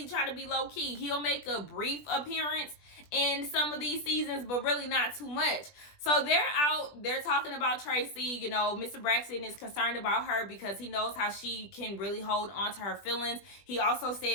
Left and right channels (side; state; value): right; late; 20 ms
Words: try to be low key. He'll make a brief appearance in some of these seasons, but really not too much. So they're out, they're talking about Tracy. You know, Mr. Braxton is concerned about her because he knows how she can really hold on to her feelings. He also